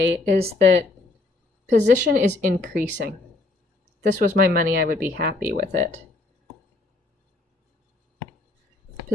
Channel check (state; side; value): quieter; right; 3.0 dB